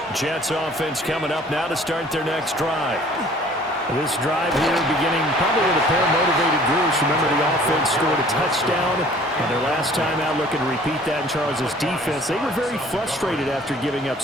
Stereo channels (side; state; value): both; normal; correlation 0.53